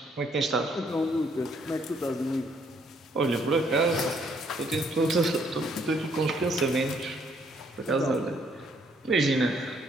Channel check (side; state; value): both; normal; correlation 0.68